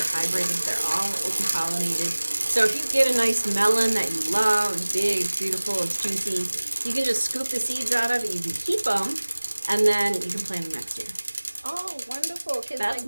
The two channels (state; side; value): inverted; both; correlation -1.00